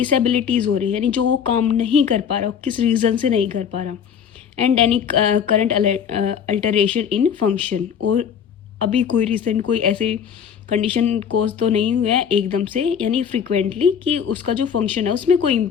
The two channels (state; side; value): quieter; right; 7.7 dB